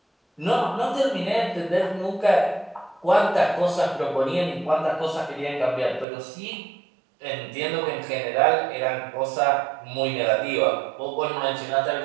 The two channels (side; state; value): left; drops out; at 6.1 s